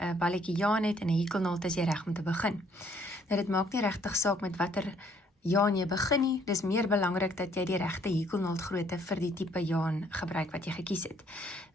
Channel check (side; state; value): both; normal; correlation 0.65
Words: balletjie jaan het en 'n hekelnaald, is jy reg om te begin. Nou dit maak nie regtig saak met watter jaan jy begin nie. Dis meer belangrik dat jy die regte hekelnaaldgrootte vir die tipe jaan gebruik wat jy gekies het.